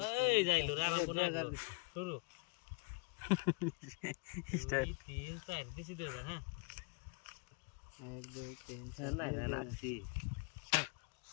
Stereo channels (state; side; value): quieter; right; 31.5 dB